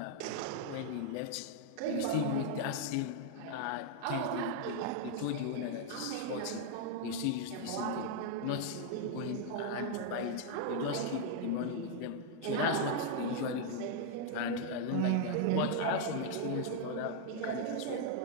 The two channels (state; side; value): different; both; correlation -0.01